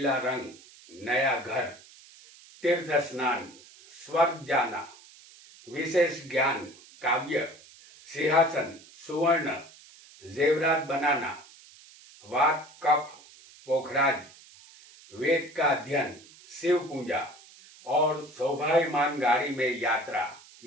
रंग, नया घर, तीर्थ स्नान, स्वर्ग जाना, विशेष ज्ञान, काव्य, सिंहासन, सुवर्ण, जेवरात बनाना, वाक, कफ, पोखराज, वेद का अध्ययन, शिव पूजा और सौभाग्यमान गाड़ी में यात्रा,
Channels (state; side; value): noise; right; hiss, 22 dB below the sound